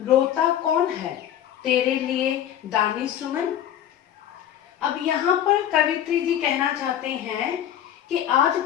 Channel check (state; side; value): quieter; right; 10.7 dB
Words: रोता कौन है तेरे लिए दानी सुमन। अब यहाँ पर कवित्री जी कहना चाहते हैं कि आज